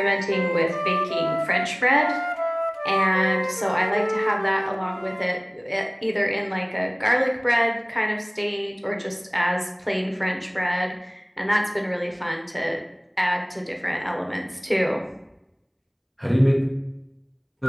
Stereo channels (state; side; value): identical; both; correlation 1.00